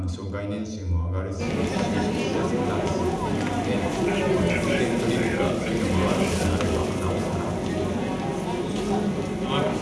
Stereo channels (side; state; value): both; identical; correlation 1.00